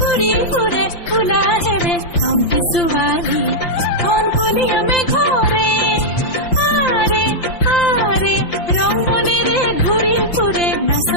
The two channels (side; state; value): right; late; 5.8 ms